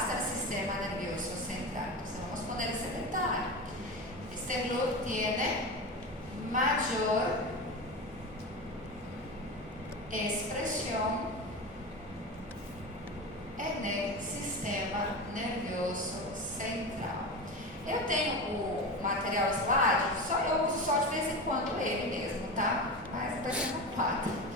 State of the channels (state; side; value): normal; both; correlation 0.25